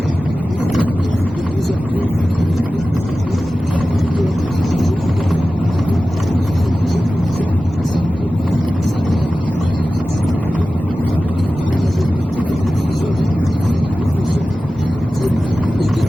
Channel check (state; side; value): normal; both; correlation 0.95